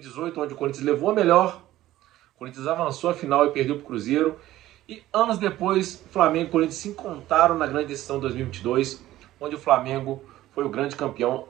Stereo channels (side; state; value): left; quieter; 14.9 dB